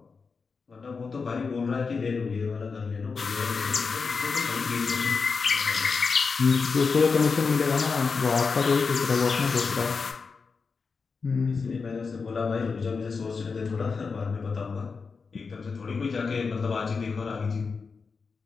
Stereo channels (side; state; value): right; quieter; 4.9 dB